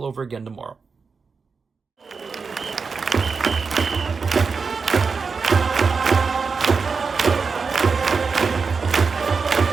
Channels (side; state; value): left; quieter; 5.0 dB